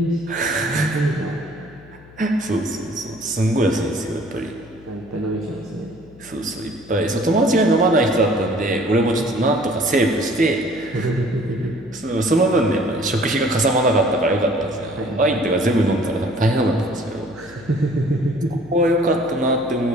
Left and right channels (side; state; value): left; noise; hum, 23 dB below the sound